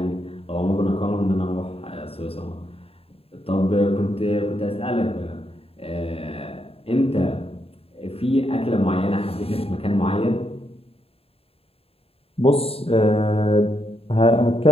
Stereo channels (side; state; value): right; late; 0.28 ms